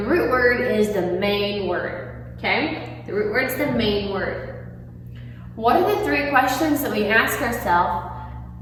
root word is the main word, okay? The root word is the main word. What are the three questions that we ask ourselves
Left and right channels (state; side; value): identical; both; correlation 1.00